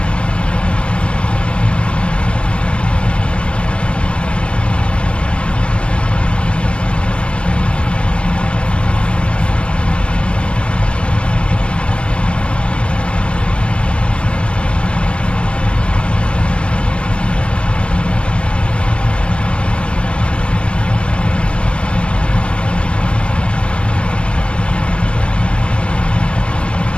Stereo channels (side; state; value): right; late; 0.058 ms